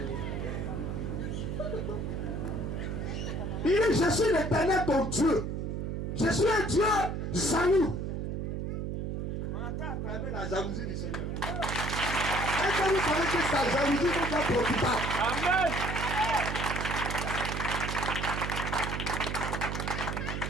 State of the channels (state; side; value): noise; right; hum, 3 dB below the sound